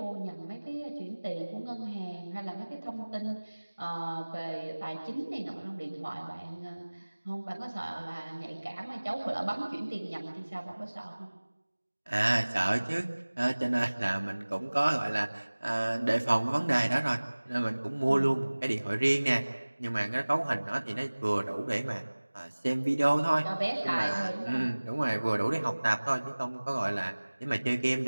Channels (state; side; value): inverted; both; correlation -1.00